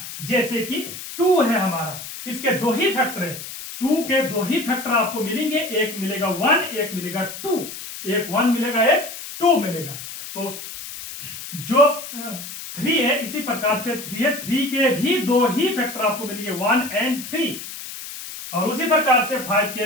जैसे कि 2 है हमारा, इसके 2 ही फैक्टर है। 2 के 2 ही फैक्टर आपको मिलेंगे, एक मिलेगा 1, एक मिलेगा 2। एक 1 मिलेगा, एक 2 मिलेगा। तो जो 3 है इसी प्रकार से 3 है, 3 के भी 2 ही फैक्टर आपको मिलेंगे, 1 and 3। और उसी प्रकार से 5 के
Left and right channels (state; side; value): noise; left; hiss, 10 dB below the sound